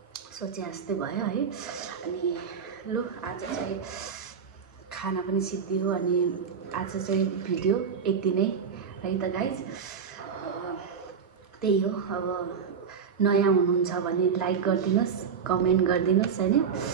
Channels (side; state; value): left; quieter; 6.5 dB